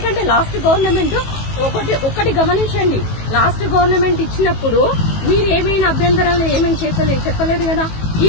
లాస్ట్ గవర్నమెంట్ ఒకటి గమనించండి, లాస్ట్ గవర్నమెంట్ ఇచ్చినప్పుడు మీరు ఏమైనా అభ్యంతరాలు ఏమైనా చెప్పలేదు కదా. ఈ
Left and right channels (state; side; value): late; right; 18 ms